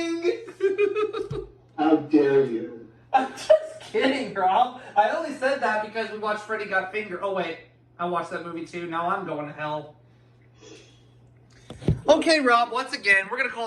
How dare you? I'm just kidding, Rob. I only said that because we watched Freddy Got Fingered. Oh, wait. I watched that movie, too. Now I'm going to hell. Okay, Rob. Once again, we're going to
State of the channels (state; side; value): identical; both; correlation 1.00